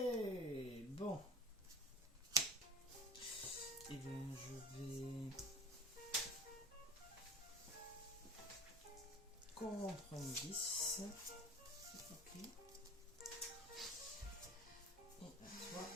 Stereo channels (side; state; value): both; normal; correlation 0.40